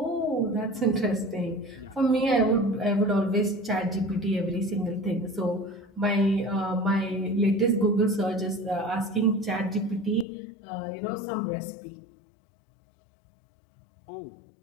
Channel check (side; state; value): right; drops out; at 10.2 s